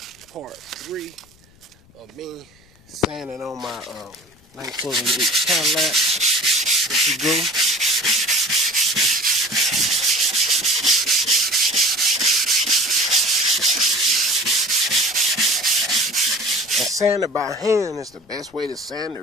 part 3 of me sanding on my 1988 cadillac. Here we go. And sanding by hand is the best way to sand it,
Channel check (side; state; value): left; noise; rumble, 30 dB below the sound